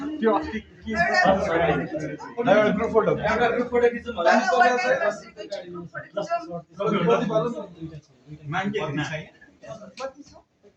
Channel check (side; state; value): both; identical; correlation 1.00